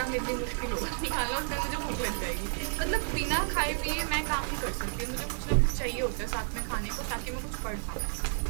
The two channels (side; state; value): left; silent; 57 dB below the other